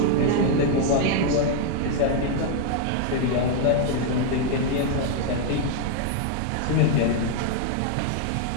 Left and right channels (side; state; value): both; different; correlation 0.00